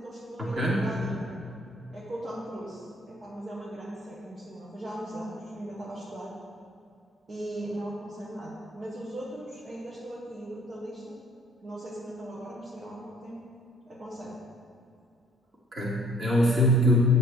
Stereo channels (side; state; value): both; normal; correlation 0.58